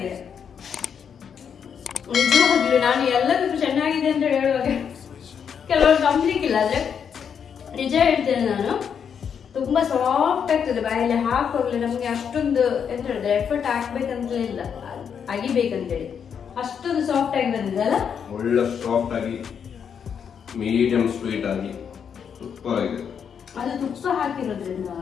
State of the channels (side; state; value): right; quieter; 7.4 dB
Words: ನಿಜವಾಗ್ಲೂ. ನಾನು ಎಲ್ಲದಕ್ಕೂ ಚೆನ್ನಾಗಿದೆ ಅಂತ ಹೇಳುವಾಗ ಕೆಲವರು ನಂಬಲಿಕ್ಕಿಲ್ಲ, ಆದ್ರೆ ನಿಜ ಹೇಳ್ತೇನೆ ನಾನು. ತುಂಬಾ ಸಾಫ್ಟ್ ಆಗ್ತದೆ ಬಾಯಲ್ಲಿ ಹಾಕುವಾಗಲೇ. ನಮ್ಗೆ ಅಷ್ಟೊಂದು ಎಂತ ಹೇಳಿದ್ರೆ ಎಫರ್ಟ್ ಹಾಕ್ಬೇಕಂತಲೇ ಇಲ್ಲ, ಅಗಿಬೇಕಂತೇಳಿ ಅಷ್ಟೊಂದು ಸಾಫ್ಟ್ ಆಗಿ ಬಂದಿದೆ ಅಲ್ಲ? ಒಳ್ಳೆ ಸಾಫ್ಟ್ ಆಗಿ ಮೀಡಿಯಂ ಸ್ವೀಟ್ ಆಗಿ ತುಪ್ಪ ಆಗಿದೆ. ಅದು ತುಪ್ಪ ಹಾಕಿರೋದ್ರಿಂದ